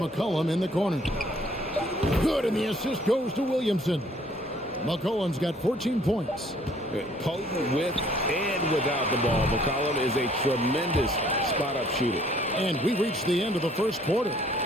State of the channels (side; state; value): both; normal; correlation 0.60